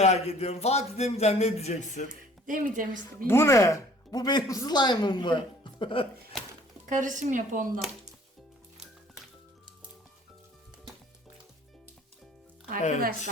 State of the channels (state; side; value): normal; both; correlation 0.54